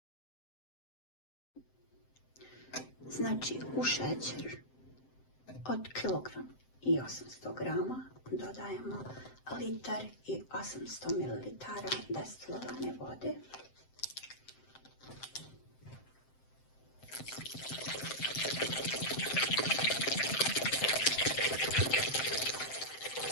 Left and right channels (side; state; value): right; late; 7.7 ms